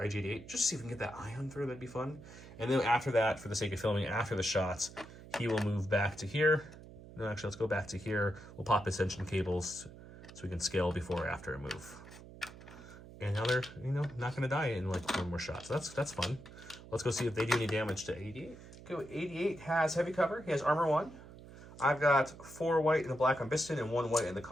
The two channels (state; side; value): noise; right; hum, 17 dB below the sound